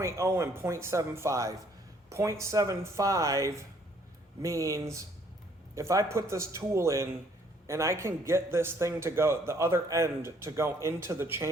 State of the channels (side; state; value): both; normal; correlation 0.64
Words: and 0.75. 0.75 means if I put this tool in and I can get this thing to go, the other end to go into the